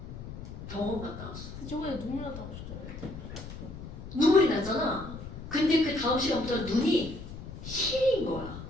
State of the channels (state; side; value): noise; left; rumble, 11 dB below the sound